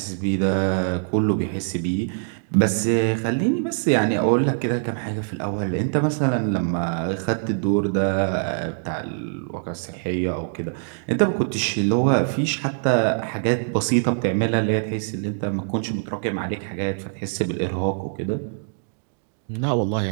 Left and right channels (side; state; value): left; silent; digital silence